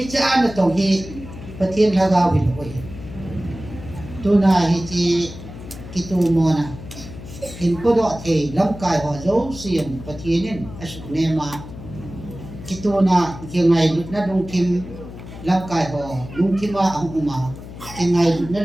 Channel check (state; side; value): noise; left; hum, 13 dB below the sound